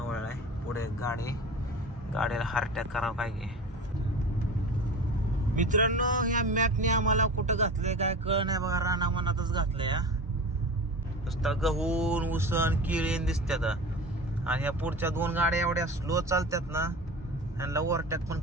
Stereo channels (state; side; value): normal; both; correlation 0.33